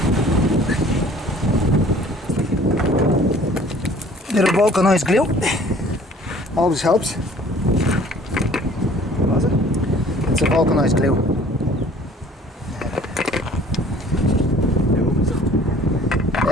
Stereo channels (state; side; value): normal; both; correlation 0.52